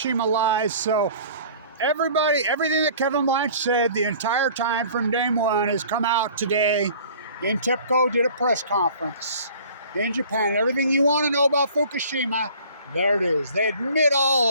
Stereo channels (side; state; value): both; inverted; correlation -0.48